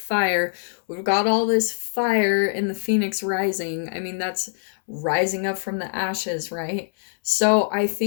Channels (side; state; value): right; silent; 63 dB below the other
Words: We've got all this fire in the phoenix rising. I mean, that's rising up from the ashes, right? So I